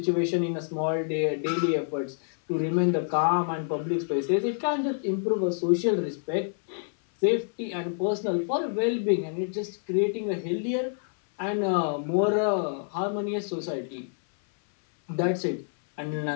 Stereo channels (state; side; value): silent; right; 60 dB below the other